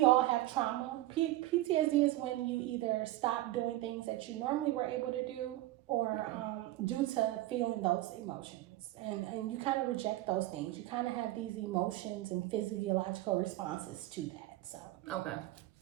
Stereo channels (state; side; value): quieter; left; 16.7 dB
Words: all have trauma. PTSD is when you either stop doing things that you normally were able to do, or due to feeling those emotions, and you kind of reject those things. You kind of have these emotions and physiological responses to that. So Okay,